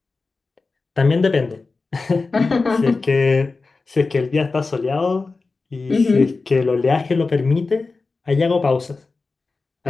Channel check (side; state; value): right; quieter; 3.9 dB